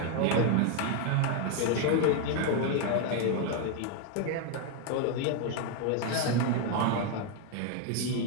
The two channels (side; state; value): both; different; correlation 0.01